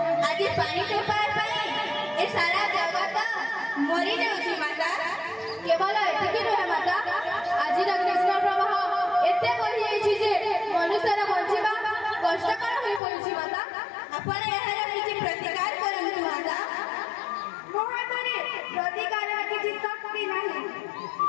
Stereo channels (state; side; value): drops out; right; at 13.0 s